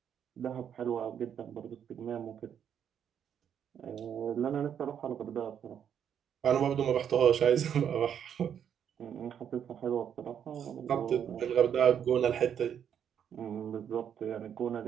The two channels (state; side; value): quieter; left; 8.7 dB